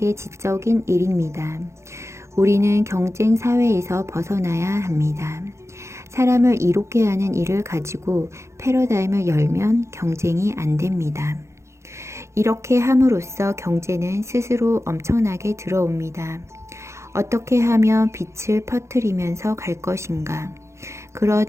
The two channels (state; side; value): late; left; 0.14 ms